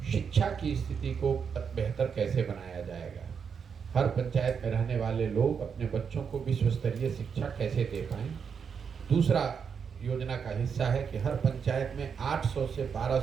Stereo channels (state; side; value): quieter; left; 6.6 dB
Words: शिक्षा की स्थिति को बेहतर कैसे बनाया जाएगा, हर पंचायत में रहने वाले लोग अपने बच्चों को विश्व स्तरीय शिक्षा कैसे दे पाएं। दूसरा योजना का हिस्सा है कि हर पंचायत में 800 से